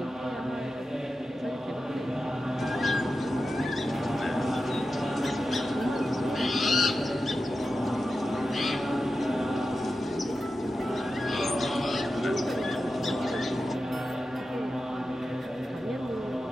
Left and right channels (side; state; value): both; normal; correlation 0.91